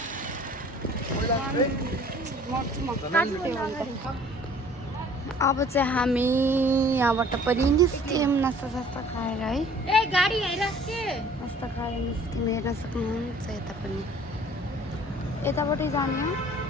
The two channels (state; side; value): normal; both; correlation 0.52